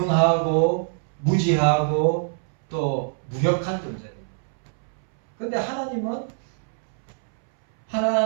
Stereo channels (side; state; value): left; silent; 63 dB below the other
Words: 무지하고 또 무력한 존재입니다. 그런데